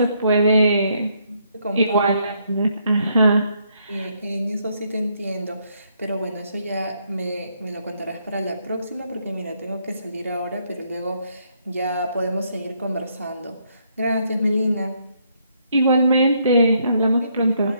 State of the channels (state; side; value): inverted; both; correlation -0.72